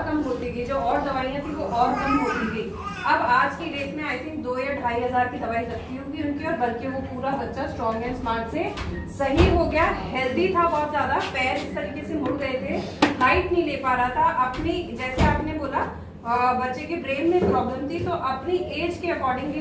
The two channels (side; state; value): both; identical; correlation 1.00